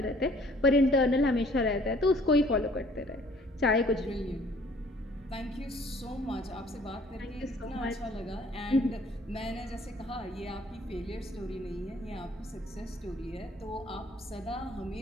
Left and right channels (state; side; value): normal; both; correlation 0.57